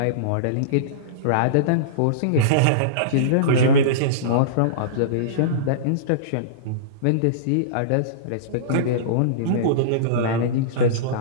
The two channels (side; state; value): both; different; correlation -0.04